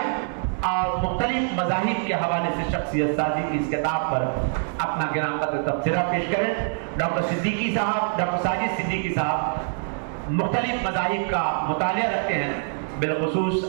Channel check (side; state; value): left; silent; digital silence